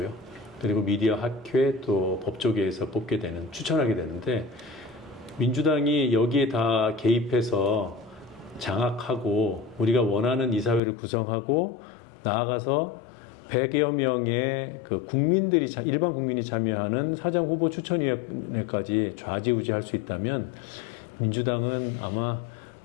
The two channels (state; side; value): drops out; right; at 10.8 s